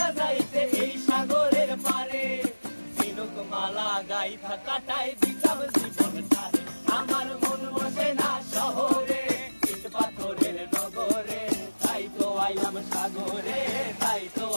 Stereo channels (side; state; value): both; inverted; correlation -1.00